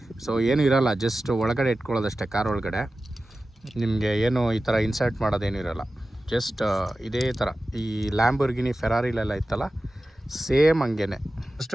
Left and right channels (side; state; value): both; normal; correlation 0.95